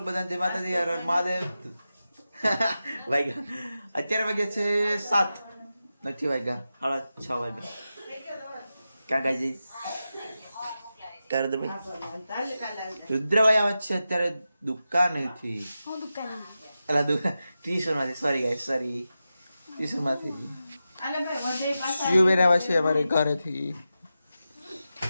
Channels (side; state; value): both; inverted; correlation -0.91